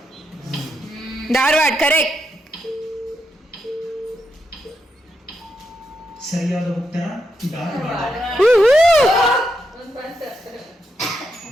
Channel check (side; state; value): both; normal; correlation 0.83